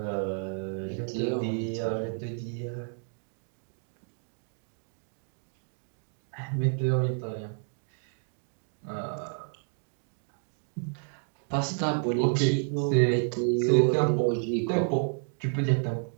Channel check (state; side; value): silent; left; 57 dB below the other